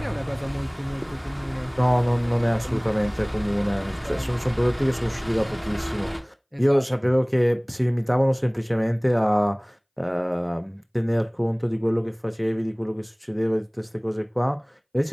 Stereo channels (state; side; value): identical; both; correlation 1.00